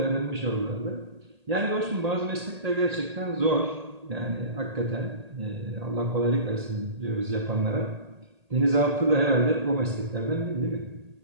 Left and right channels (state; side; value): late; left; 1.8 ms